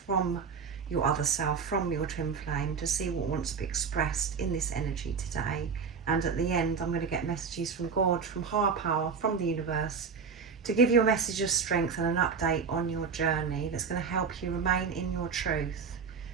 your other self, from your twin flame, to see what wants to be expressed in this energy today. And at the end, I'm going to get messages from God, from higher power, from the universe, to give you a message of strength and an update on your journey that's going to help you remain in your truth,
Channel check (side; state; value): left; quieter; 5.8 dB